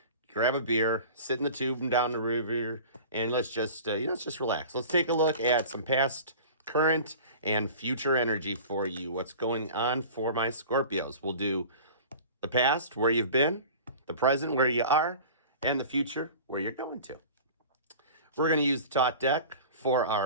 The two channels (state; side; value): inverted; both; correlation -0.39